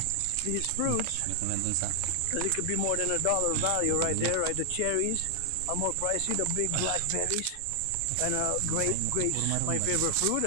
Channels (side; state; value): both; different; correlation 0.00